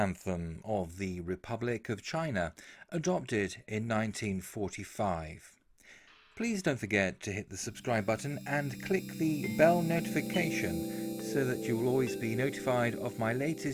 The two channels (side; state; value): both; identical; correlation 1.00